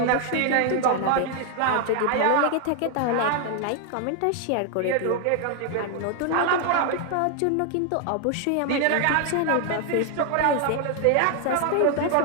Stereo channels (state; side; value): different; both; correlation 0.00